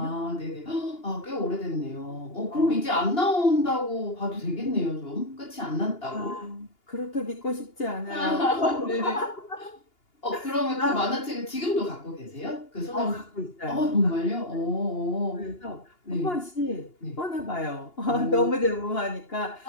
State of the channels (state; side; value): late; right; 2.8 ms